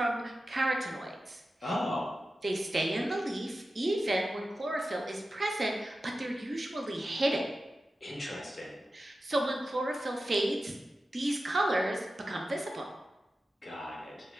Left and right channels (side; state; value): both; normal; correlation 0.93